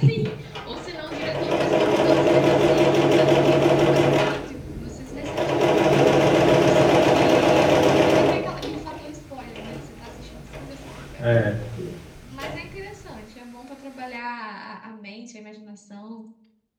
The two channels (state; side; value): identical; both; correlation 1.00